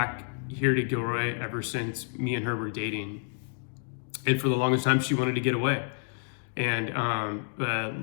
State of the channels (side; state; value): right; silent; 58 dB below the other